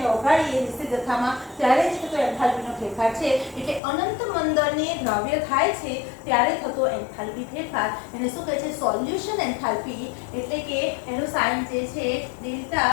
ઓગાળીએ નિશ્ચિત જથ્થામાં ત્યારે જ થતો એન્થાલ્પીનો ફેરફાર છે. એટલે અનંત મંદને દ્રાવ્ય થાય છે ત્યારે થતો એન્થાલ્પી ફેરફાર એને શું કહે છે, સોલ્યુશન એન્થાલ્પી. એટલે કે એનું સાઇન જે છે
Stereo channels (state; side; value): drops out; right; at 3.8 s